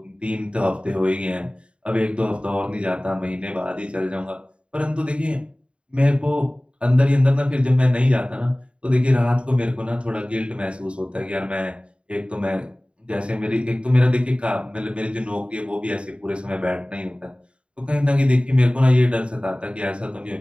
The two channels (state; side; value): late; left; 0.056 ms